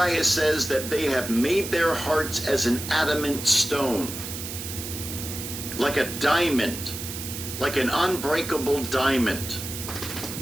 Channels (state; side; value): noise; right; hiss, 8 dB below the sound